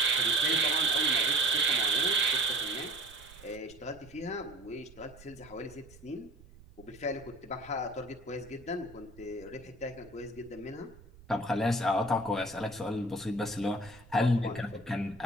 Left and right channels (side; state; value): right; noise; rumble, 22 dB below the sound